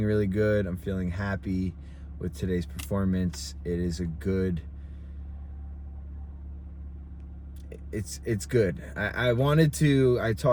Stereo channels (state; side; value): identical; both; correlation 1.00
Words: really good. I'm feeling happy with today's performance. It is a good, it's good. I